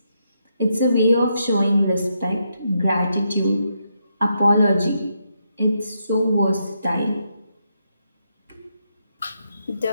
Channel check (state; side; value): inverted; both; correlation -0.80